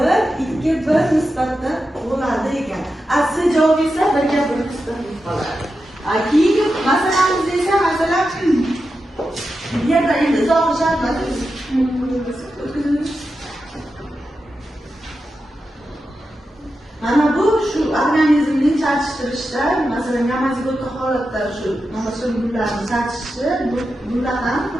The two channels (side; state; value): both; normal; correlation 0.90